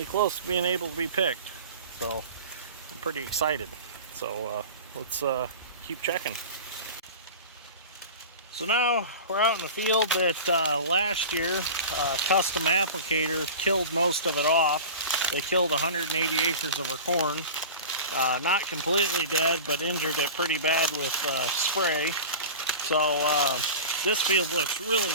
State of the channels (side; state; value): both; inverted; correlation -0.34